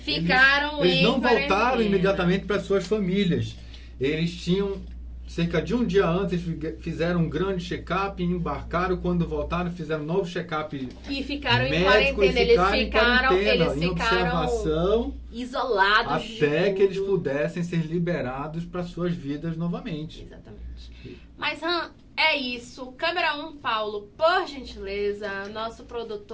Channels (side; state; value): both; identical; correlation 1.00